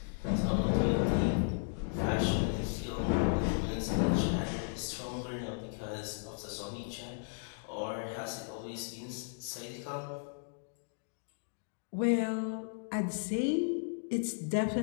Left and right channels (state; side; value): silent; right; digital silence